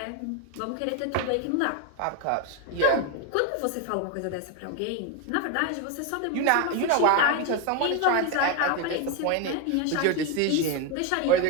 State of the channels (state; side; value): different; both; correlation 0.01